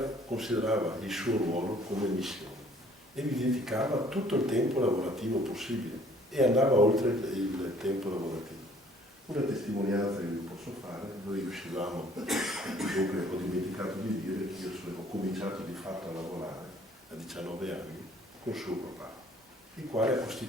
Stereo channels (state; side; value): normal; both; correlation 0.58